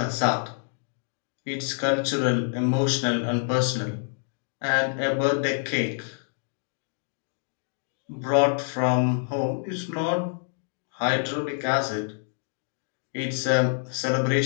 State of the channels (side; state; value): right; silent; digital silence